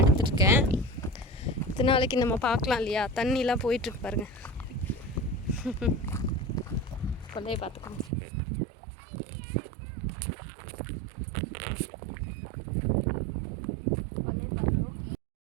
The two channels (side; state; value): left; drops out; at 8.1 s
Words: எடுத்துருக்கேன். இத்தனை நாளைக்கு நம்ம பார்க்கலாம் இல்லையா, தண்ணிலாம் போயிட்டுருக்கு பாருங்கள். கொல்லையை பார்த்துக்கோங்க.